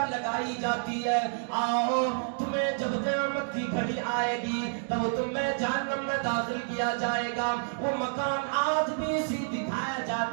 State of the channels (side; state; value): left; silent; digital silence